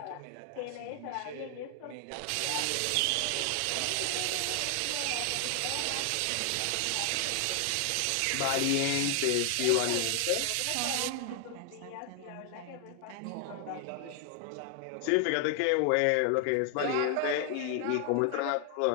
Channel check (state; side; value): different; both; correlation 0.00